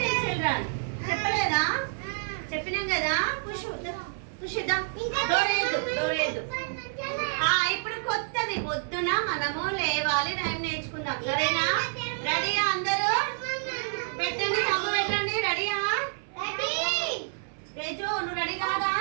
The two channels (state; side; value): silent; left; 58 dB below the other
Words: చిల్డ్రన్ చెప్పలేదా? చెప్పినాం కదా. పుషిద్దాం. డోరేదు. ఇప్పుడు కొత్తది. పొద్దున మనము లేవాలి, రైమ్ నేర్చుకుందాం. సరేనా? రెడీయా అందరూ? పెట్టండి, తమ్ము పెట్టండి. రెడీయా? తేజు నువ్వు రెడీ కాదా?